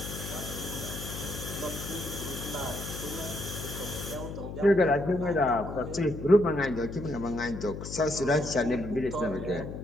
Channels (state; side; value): noise; left; hum, 8 dB below the sound